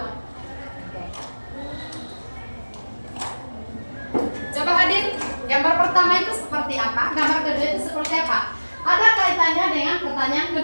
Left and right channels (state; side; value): inverted; both; correlation -1.00